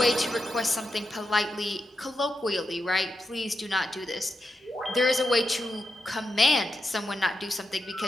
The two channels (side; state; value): both; normal; correlation 0.87